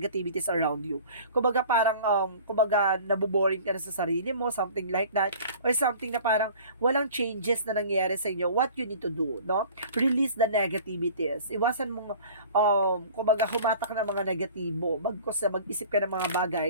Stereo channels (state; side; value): inverted; both; correlation -0.44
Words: around you. Kumbaga, parang, nabuboring ka na sa sarili mo, something like that. Or something na parang, walang changes na nangyayari sa inyo. What you need to do, no? Release the negativities. Iwasan mong, humatak ng mga negatibo. Bagkos na mag-isip ka ng mga